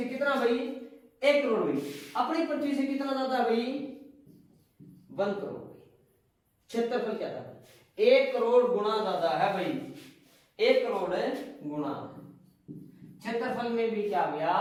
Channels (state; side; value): identical; both; correlation 1.00